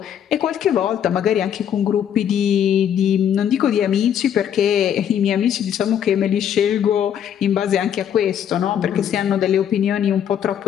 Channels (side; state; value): right; quieter; 9.2 dB